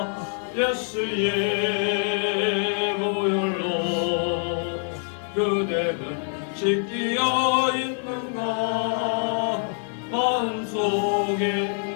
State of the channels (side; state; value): right; silent; 60 dB below the other